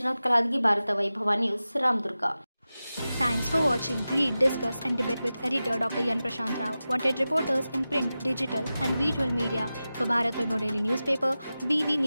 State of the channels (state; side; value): inverted; both; correlation -0.94